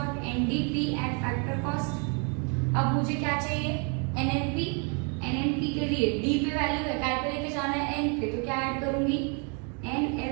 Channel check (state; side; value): quieter; left; 37.1 dB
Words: NDP at factor cost. अब मुझे क्या चाहिए, एनएनपी, एनएनपी के लिए डी पे वैल्यू है, काय पे लेके जाना है, एन पे, तो क्या ऐड करूंगी,